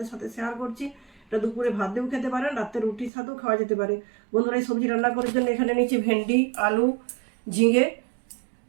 সাথে শেয়ার করছি। এটা দুপুরে ভাত দিয়েও খেতে পারেন, রাত্রে রুটির সাথেও খাওয়া যেতে পারে। বন্ধুরা, এই সবজি রান্না করার জন্য এখানে নিয়েছি ভেন্ডি, আলু, ঝিঙে,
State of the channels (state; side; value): drops out; left; at 3.1 s